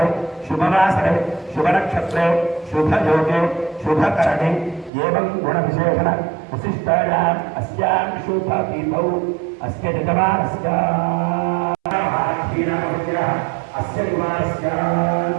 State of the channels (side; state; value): left; drops out; at 4.9 s